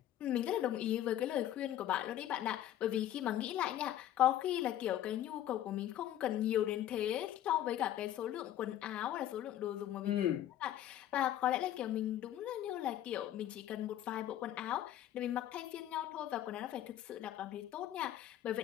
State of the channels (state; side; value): quieter; right; 12.1 dB